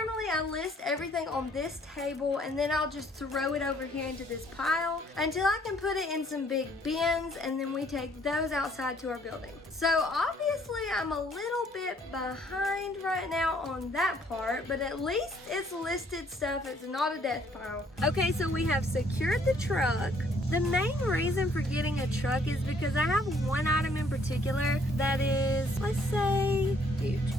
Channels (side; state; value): both; normal; correlation 0.63